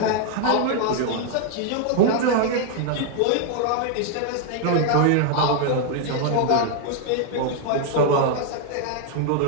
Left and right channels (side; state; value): both; different; correlation 0.00